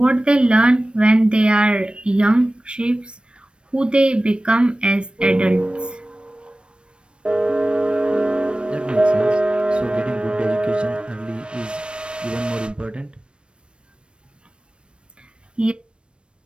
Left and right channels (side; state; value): left; late; 0.057 ms